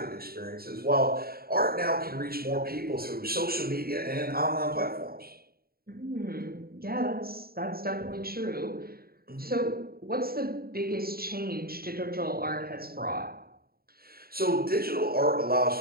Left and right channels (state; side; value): late; left; 0.44 ms